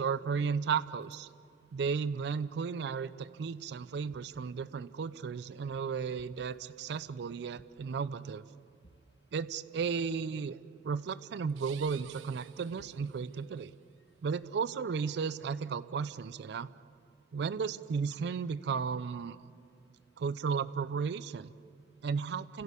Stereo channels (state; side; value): quieter; left; 5.5 dB